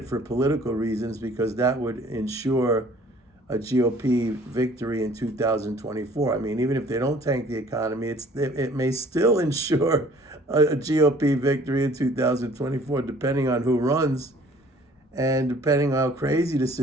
for political reasons because that would ensure a GOP victory in 2024. I mean, even if they don't tank the economy, it may still ensure a GOP victory in 2024, depending on who runs and depending on how crazy the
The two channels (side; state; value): both; normal; correlation 0.54